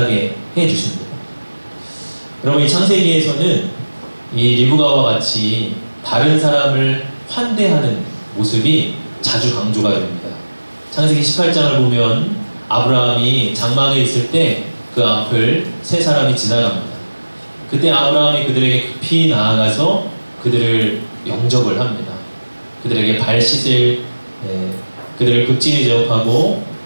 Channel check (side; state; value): both; inverted; correlation -1.00